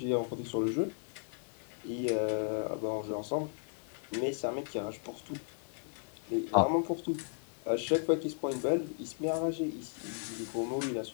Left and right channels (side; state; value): right; silent; 54 dB below the other